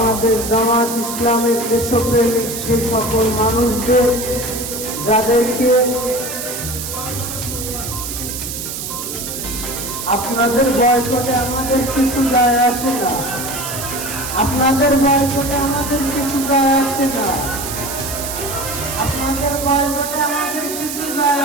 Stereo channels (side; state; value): right; noise; hiss, 6 dB below the sound